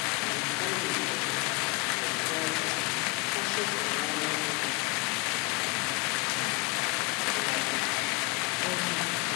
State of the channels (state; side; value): quieter; right; 24.6 dB